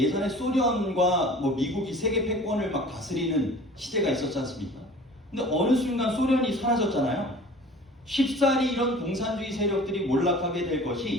소련과 미국이 세계 패권을 막 다스리는 시대가 있었지 않습니까? 근데 어느 순간 소련이 사라졌잖아요. 쉽사리 이런 공산주의 세력들이 몰락하게 될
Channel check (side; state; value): both; normal; correlation 0.44